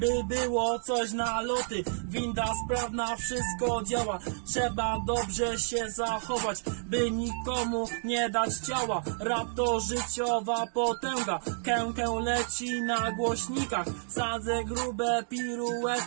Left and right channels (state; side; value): silent; left; digital silence